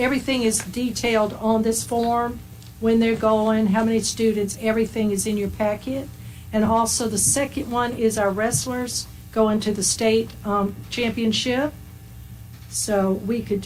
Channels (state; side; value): identical; both; correlation 1.00